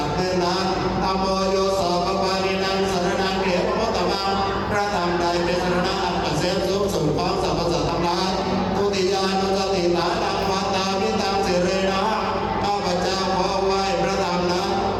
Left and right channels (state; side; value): identical; both; correlation 1.00